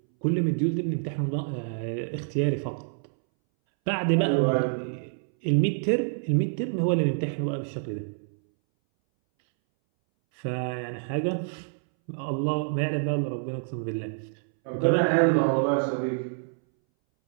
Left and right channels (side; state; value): left; silent; 60 dB below the other